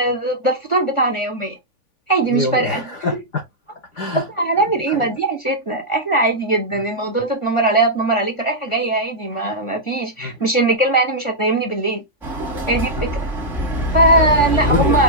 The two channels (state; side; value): late; right; 3.5 ms